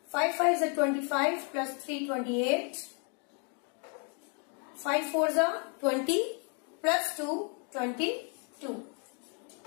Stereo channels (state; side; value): quieter; right; 38.5 dB